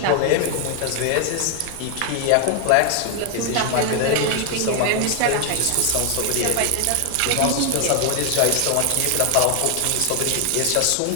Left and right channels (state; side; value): different; both; correlation 0.00